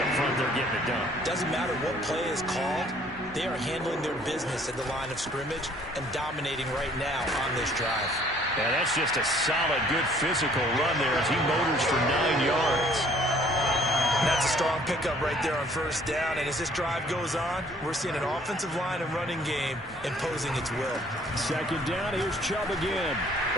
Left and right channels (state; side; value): normal; both; correlation 0.58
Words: front, they're getting it done. Doesn't matter what play is called. They are handling their business at the line of scrimmage and dominating right now on this drive. Yeah, that's just a solid, good physical run there as he motors for 9 yards. That's a strong pickup right there on first down. And as this drive goes on, we're seeing an offensive line and running game imposing its will. 2nd down, here's Chubb again.